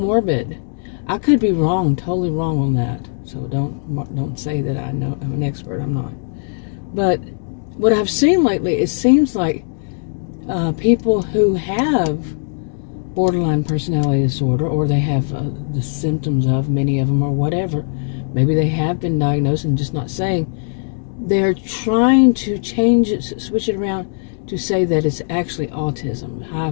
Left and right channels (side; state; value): right; silent; digital silence